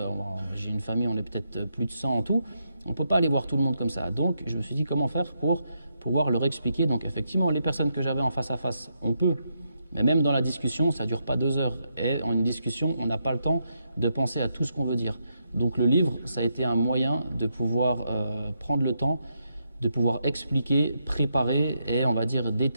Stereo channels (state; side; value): inverted; both; correlation -0.81